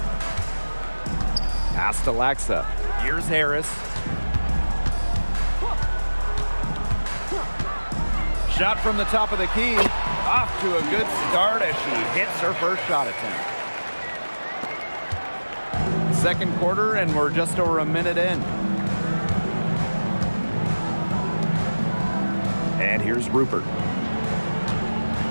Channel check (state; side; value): inverted; both; correlation -1.00